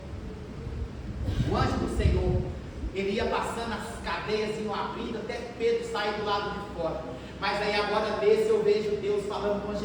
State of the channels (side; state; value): both; identical; correlation 1.00